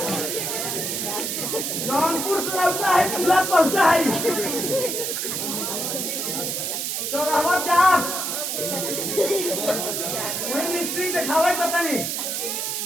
जौनपुर से लौटा है, तुला पहुंचा है चौराहा जा वही मिस्त्री दिखावे पता नहीं।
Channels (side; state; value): right; noise; hiss, 2 dB below the sound